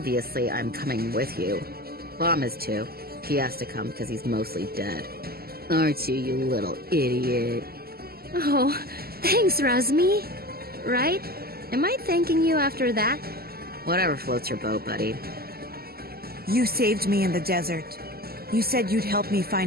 I'm coming with you. Bom is too. He has to come because he's mostly dead. Aren't you, you little idiot? Oh, thanks, Razmi. Right? Am I thanking you after that? Whatever floats your boat, buddy. You saved me in the desert. You said you'd help me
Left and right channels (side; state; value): left; late; 0.45 ms